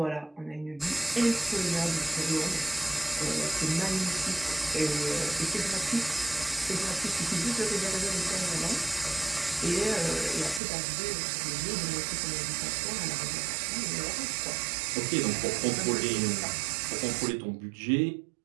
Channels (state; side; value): drops out; left; at 10.6 s